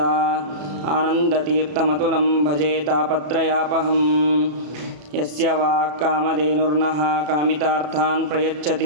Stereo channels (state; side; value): late; left; 34 ms